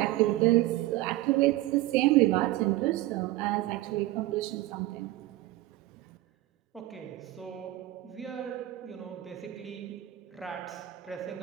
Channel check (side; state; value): left; quieter; 16.9 dB